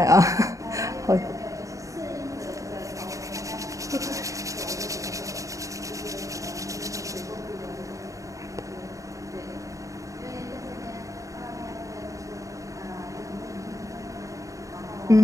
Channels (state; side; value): late; left; 0.16 ms